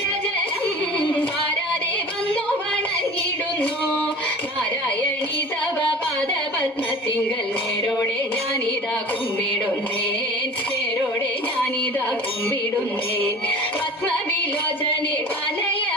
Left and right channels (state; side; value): normal; both; correlation 0.40